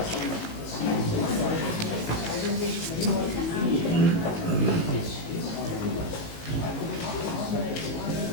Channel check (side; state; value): right; late; 19 ms